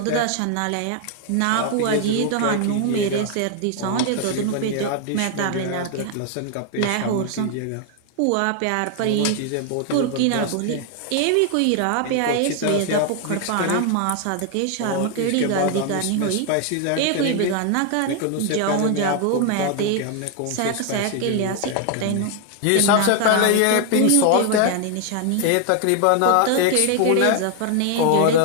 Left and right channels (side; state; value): both; different; correlation 0.00